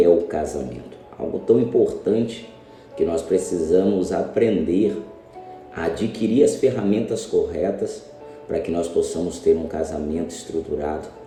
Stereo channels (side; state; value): both; identical; correlation 1.00